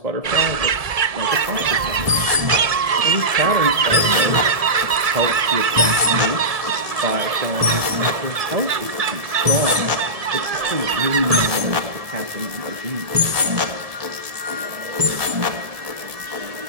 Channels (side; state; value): left; late; 1.7 ms